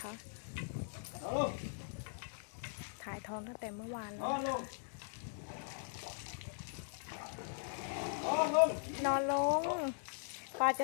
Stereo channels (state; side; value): silent; right; digital silence